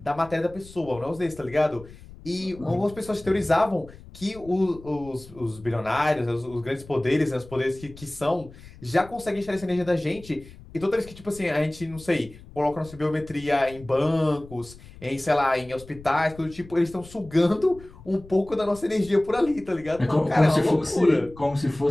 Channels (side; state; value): left; noise; rumble, 19 dB below the sound